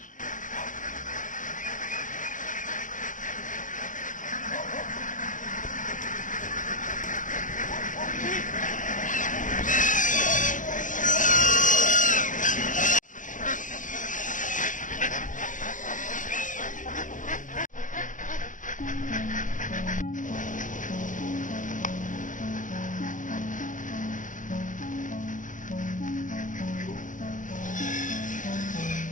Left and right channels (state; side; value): late; right; 0.37 ms